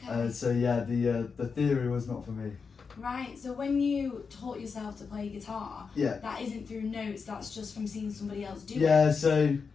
So yeah, the theory was not for me. Right, so when you taught yourself to play guitar, that isn't through notes, that's just from seeing somebody else do it? Yeah, so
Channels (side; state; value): right; quieter; 5.4 dB